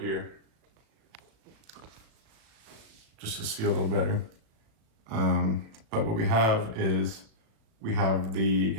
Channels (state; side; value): late; left; 37 ms